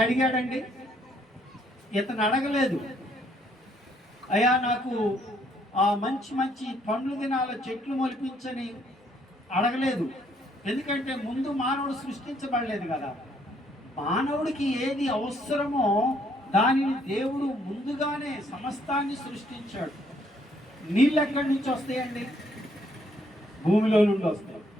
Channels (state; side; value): normal; both; correlation 0.68